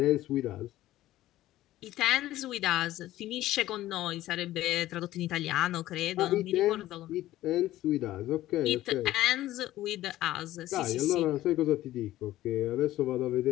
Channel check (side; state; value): right; quieter; 15.0 dB